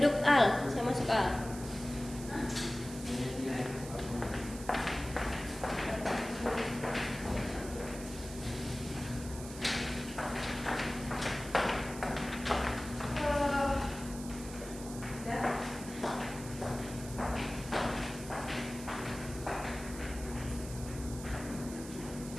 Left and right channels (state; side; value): noise; right; hiss, 13 dB below the sound